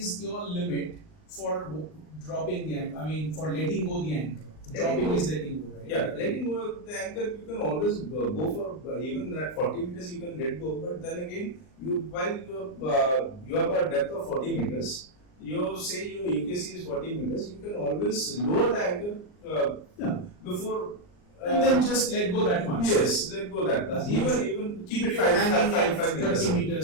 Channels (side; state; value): right; late; 39 ms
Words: your limit for dropping the anchor? I mean, for letting go the anchor. Letting Dropping go. is letting go, right? Yeah, letting go of the anchor, you can always go for even at 40 meters. You can let go, but then again, while you have a depth of 40 meters, your UKC is 40 meters. You can always lower the anchor Yeah. before. And then just let go that much. Yes, let go that much. Even keep it hanging at 5 meters. 30